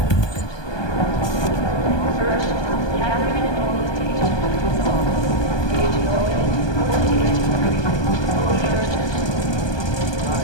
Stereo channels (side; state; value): right; late; 1.2 ms